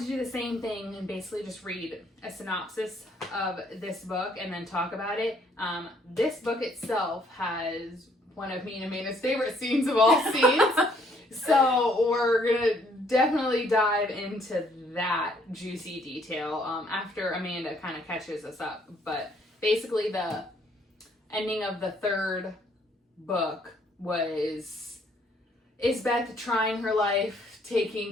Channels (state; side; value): normal; both; correlation 0.66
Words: do the same thing and basically just read a synopsis of this book and then talk about it. This book itself has one of me and Amanda's favorite scenes of all scenes. So we're going to definitely dive into that juicy detail after Amanda kind of catches us up. But basically the ending of the third book was Isbeth trying her life,